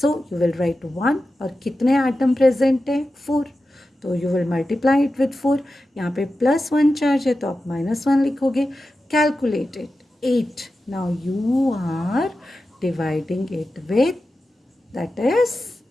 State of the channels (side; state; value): both; normal; correlation 0.92